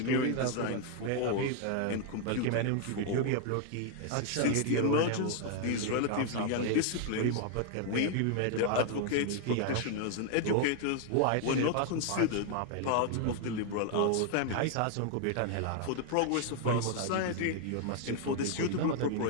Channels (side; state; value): both; different; correlation 0.00